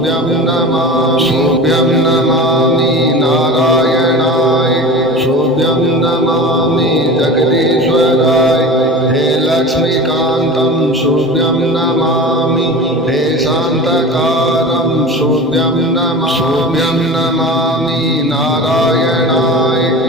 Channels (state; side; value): normal; both; correlation 0.35